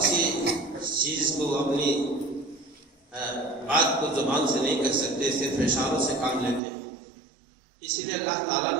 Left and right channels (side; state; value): left; drops out; at 6.6 s